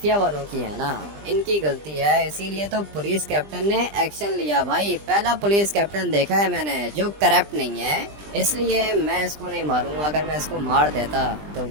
वालों की है ना, इनकी गलती है, इसीलिए तो पुलिस कैप्टन ने एक्शन लिया। भाई पहला पुलिस कैप्टन देखा है मैंने जो करप्ट नहीं है, इसलिए मैं इसको नहीं मारूंगा। अगर मैं इसको मार देता तो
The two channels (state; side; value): late; left; 20 ms